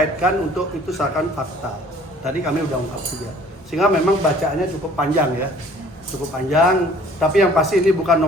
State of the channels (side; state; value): both; normal; correlation 0.54